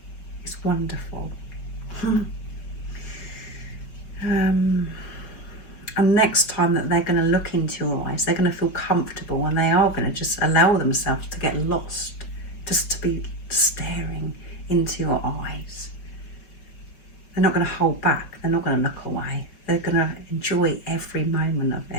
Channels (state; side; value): late; right; 5.2 ms